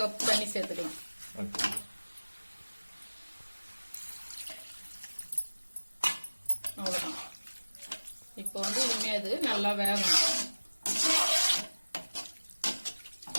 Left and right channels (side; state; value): both; inverted; correlation -1.00